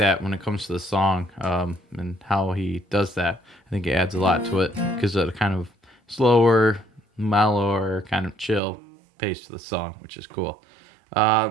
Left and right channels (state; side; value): drops out; left; at 8.6 s